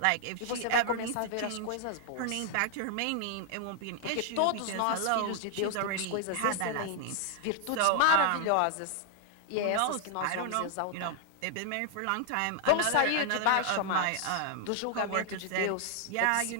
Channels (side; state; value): both; different; correlation -0.01